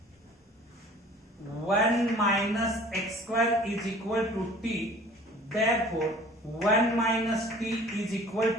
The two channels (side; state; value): both; normal; correlation 0.49